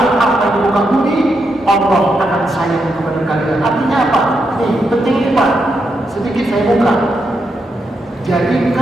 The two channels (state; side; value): normal; both; correlation 0.82